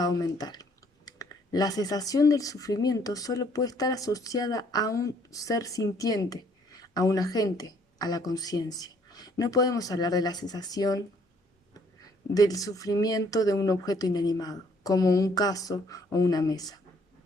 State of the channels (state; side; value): normal; both; correlation 0.63